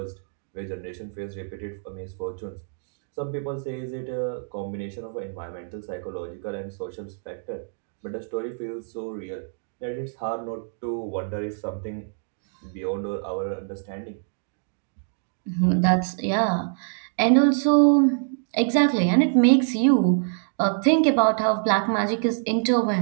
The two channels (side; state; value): left; silent; digital silence